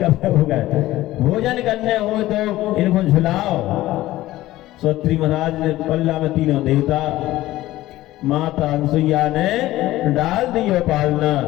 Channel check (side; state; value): right; quieter; 16.1 dB